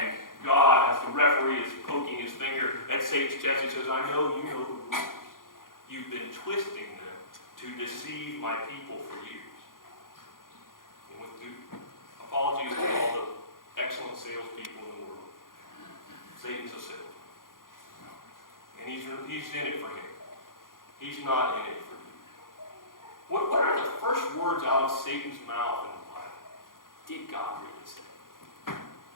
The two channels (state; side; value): late; right; 0.91 ms